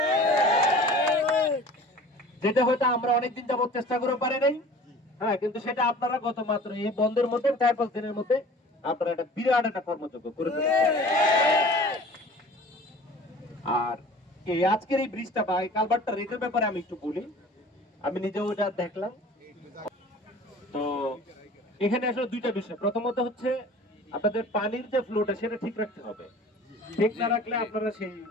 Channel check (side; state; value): both; normal; correlation 0.44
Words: যেটা হয়তো আমরা অনেকদিন যাবত চেষ্টা করে পারি নাই। হ্যাঁ, কিন্তু সেটা আপনারা গত মাত্র এই বন্ধের মধ্যে 4-5 দিনের মধ্যে আপনারা একটা বিরাট একটা কর্মযোগ্য করে ফেলেছেন। আর এই আজকের এই ব্রিজটা বা এই কালভার্টটা রেটের ব্যাপারে আমি একটু বলি। আমি নিজেও এটা দেখলাম। তো এখানে আসলে দুইটা বিষয়। প্রথমত হচ্ছে আপনাদের পানির যে ফ্লোটা সেটা ঠিক রাখতে হবে। ঠিক না রাখলে আপনারা সেই